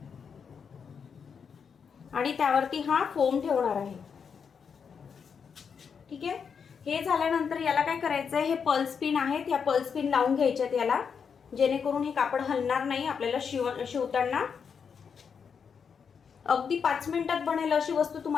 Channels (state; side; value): quieter; right; 6.5 dB